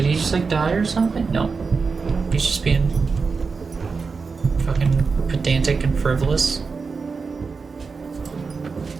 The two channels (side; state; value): left; quieter; 4.8 dB